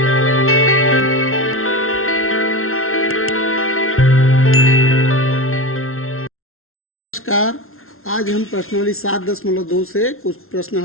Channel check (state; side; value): late; right; 0.62 ms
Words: नमस्कार। आज हम प्रश्नावली 7.2 से कुछ प्रश्न